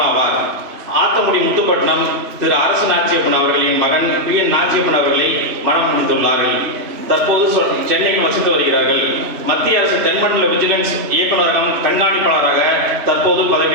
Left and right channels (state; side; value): late; left; 3.0 ms